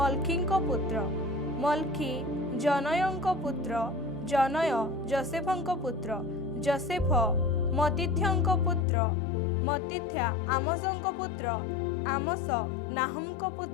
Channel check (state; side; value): drops out; right; at 8.8 s